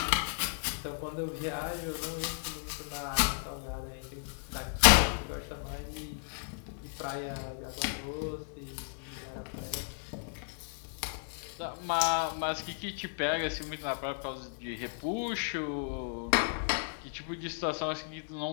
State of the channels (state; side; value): silent; right; digital silence